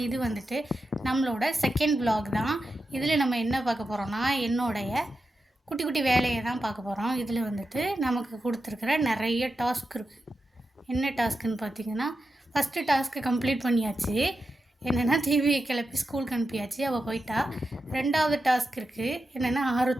இது வந்துட்டு நம்மளோட செகண்ட் vlog தான். இதில் நம்ம என்ன பார்க்க போகிறோன்னா, என்னுடைய குட்டி குட்டி வேலையை தான் பார்க்க போகிறோம். இதில் வந்துட்டு நமக்கு கொடுத்துருக்குற நிறைய டாஸ்க் இருக்குது. என்ன டாஸ்க்குன்னு பார்த்தீங்கன்னா, ஃபஸ்ட்டு டாஸ்க்கு கம்ப்ளீட் பண்ணியாச்சு. என்னென்னா, டிவியை கிளப்பி ஸ்கூலுக்கு அனுப்பியாச்சு, அவள் போயிட்டா. ரெண்டாவது டாஸ்க் இருக்குது. என்னென்னா,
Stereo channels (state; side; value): normal; both; correlation 0.90